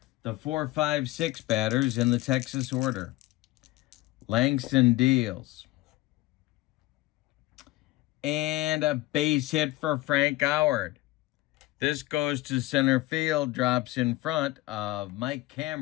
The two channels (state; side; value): quieter; right; 18.6 dB